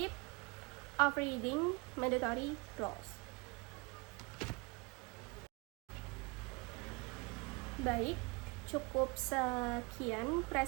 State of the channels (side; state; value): left; quieter; 27.5 dB